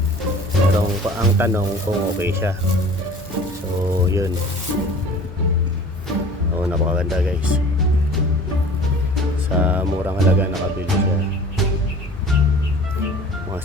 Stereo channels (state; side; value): normal; both; correlation 0.45